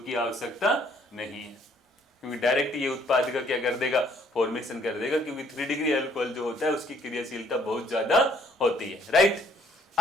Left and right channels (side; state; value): both; normal; correlation 0.63